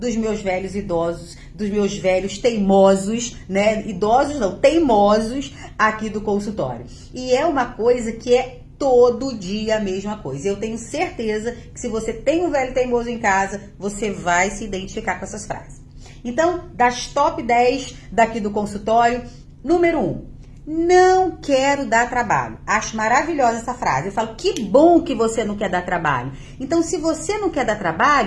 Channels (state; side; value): identical; both; correlation 1.00